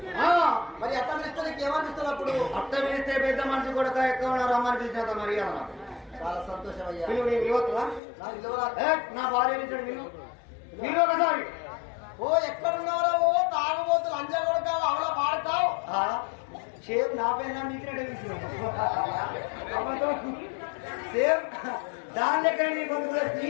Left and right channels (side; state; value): right; drops out; at 8.0 s